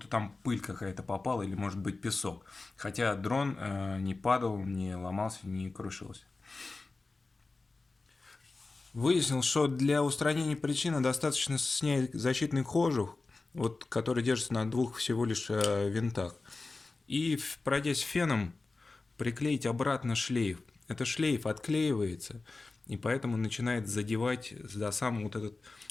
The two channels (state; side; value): quieter; right; 3.6 dB